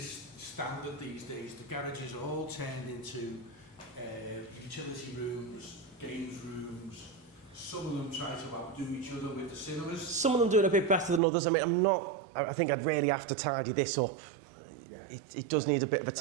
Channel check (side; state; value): left; drops out; at 11.2 s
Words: standard these days. The garages are all turned into utility rooms, games rooms. Some of them try to outdo each other with the cinemas. Some of them doing a bit better than others. I mean, I think I'd really have to tidy this up. Yeah. It does need a bit of a